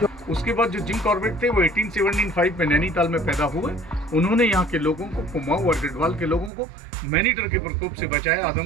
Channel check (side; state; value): left; drops out; at 6.5 s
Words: उसके बाद जो जिम कॉर्बेट थे वो 1875 में नैनीताल में पैदा हुए। उन्होंने यहाँ के लोगों को, कुमाऊं और गढ़वाल के लोगों को मैनीटर के प्रकोप से बचाया,